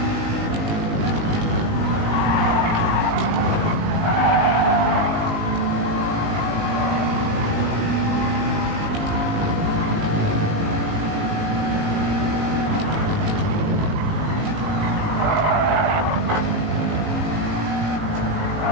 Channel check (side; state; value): left; late; 19 ms